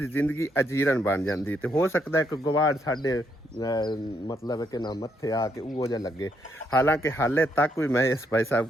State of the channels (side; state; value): both; normal; correlation 0.75